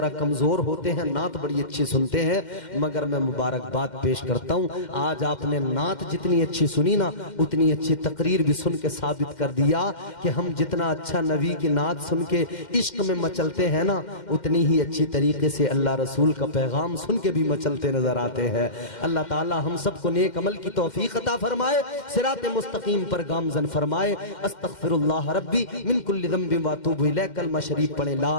कमजोर होते हैं, नात बड़ी अच्छी सुनते हैं, मगर मैं मुबारकबाद पेश करता हूं। आज आपने नात जितनी अच्छी सुनी ना, उतनी अच्छी तकरीर भी सुन के साबित कर दिया कि हम जितना अच्छा नबी की नात सुन के इश्क में मचलते हैं ना, उतनी ही अच्छी तरीके से अल्लाह रसूल का पैगाम सुन के भी मचलते नजर आते हैं। अल्लाह ताला हम सबको नेक अमल की तौफीक अता फरमाए, सिरात मुस्तकीम पर गामजन फरमाए। अस्तगफिरुल्लाह रब्बी मिन कुल्लि ज़ंबिन व अतूबु इलैह। कलमा शरीफ पढ़े, ला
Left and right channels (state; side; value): late; right; 2.1 ms